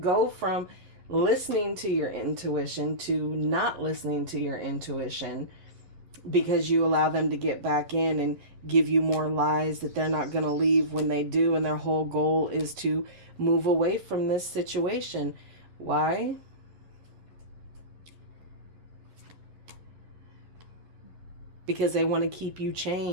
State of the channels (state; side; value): late; left; 11 ms